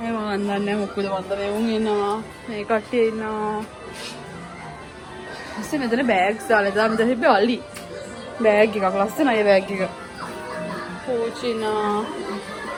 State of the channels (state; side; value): identical; both; correlation 1.00